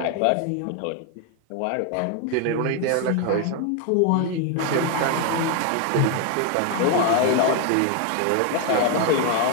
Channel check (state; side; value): different; both; correlation 0.01